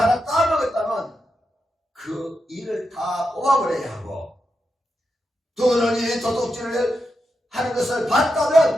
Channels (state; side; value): normal; both; correlation 0.87